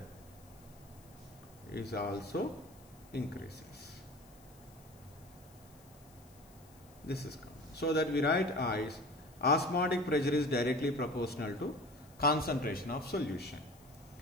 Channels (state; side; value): noise; left; hiss, 26 dB below the sound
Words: is also increases. This is so that we write as osmotic pressure is directly proportional to concentration of solution.